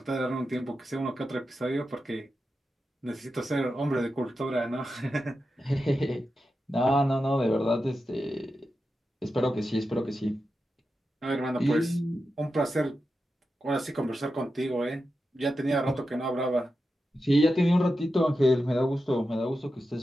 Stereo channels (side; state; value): both; normal; correlation 0.90